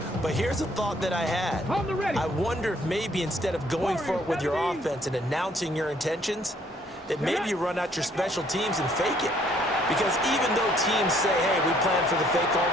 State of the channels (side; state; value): both; normal; correlation 0.64